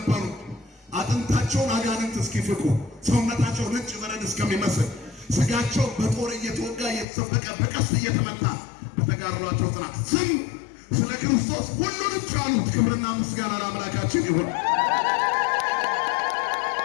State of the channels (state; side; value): drops out; right; at 7.1 s